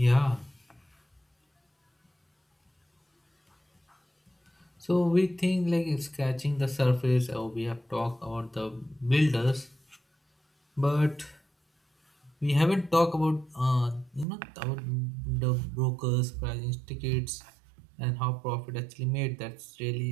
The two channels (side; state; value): left; drops out; at 14.2 s